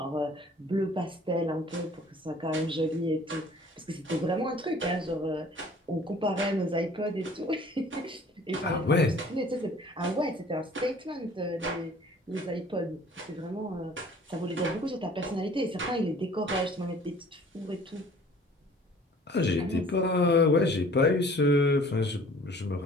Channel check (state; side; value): normal; both; correlation 0.51